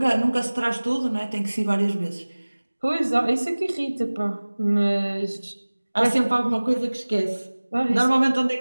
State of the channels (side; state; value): both; inverted; correlation -1.00